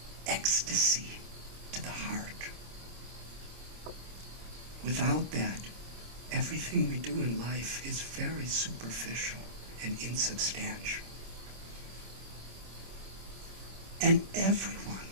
ecstasy to the heart. Without that, everything we do in life is very superficial and insubstantial. And everyone,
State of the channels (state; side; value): late; left; 26 ms